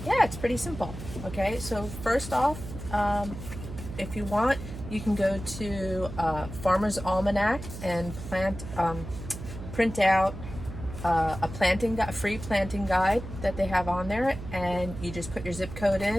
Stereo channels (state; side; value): noise; right; hum, 10 dB below the sound